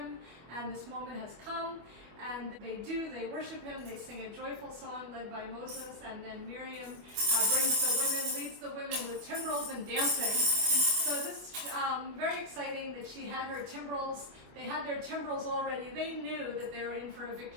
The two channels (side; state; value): left; late; 25 ms